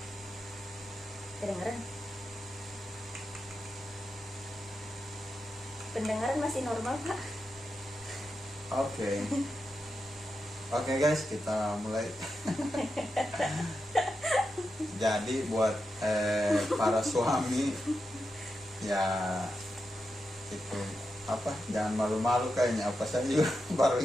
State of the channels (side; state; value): both; normal; correlation 0.88